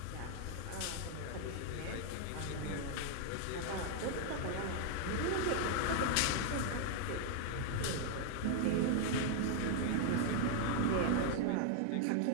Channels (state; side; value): different; both; correlation 0.00